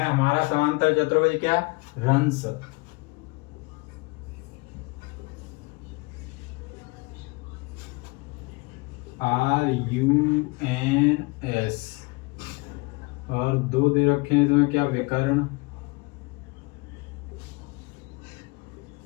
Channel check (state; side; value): quieter; right; 26.7 dB